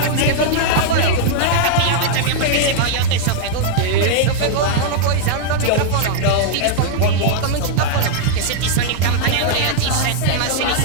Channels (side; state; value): both; different; correlation -0.01